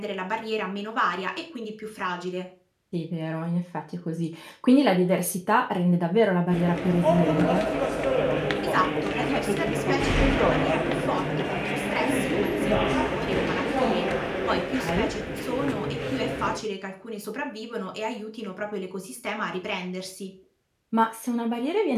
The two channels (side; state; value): both; identical; correlation 1.00